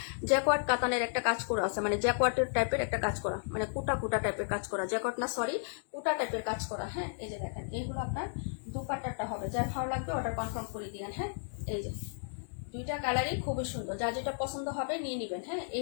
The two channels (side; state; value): right; silent; digital silence